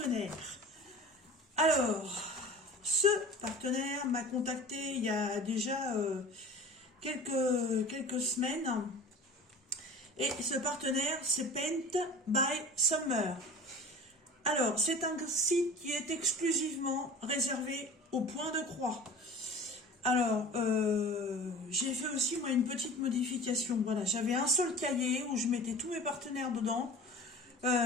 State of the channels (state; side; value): normal; both; correlation 0.39